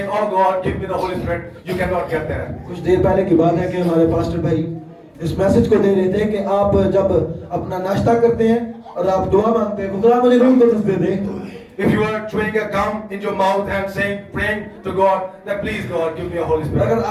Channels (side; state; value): both; identical; correlation 1.00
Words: oh God, give me the Holy Spirit, you cannot get there. कुछ देर पहले की बात है कि हमारे पास्टर भाई इस मैसेज को दे रहे थे कि आप जब अपना नाश्ता करते हैं और आप दुआ मांगते हैं, खुदा मुझे रूह कुदस दे दे, if you are chewing a gum in your mouth and saying, praying to God, that please God, give me a Holy Spirit. अगर